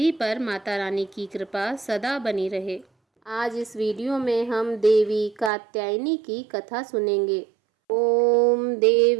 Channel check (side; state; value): left; drops out; at 5.5 s